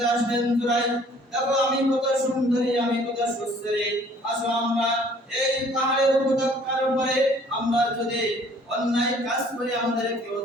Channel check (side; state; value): both; normal; correlation 0.56